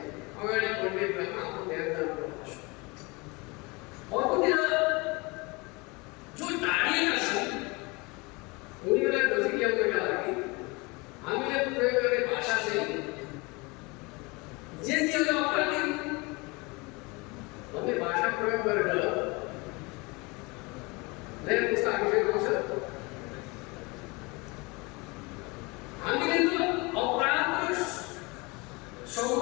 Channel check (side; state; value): right; quieter; 26.4 dB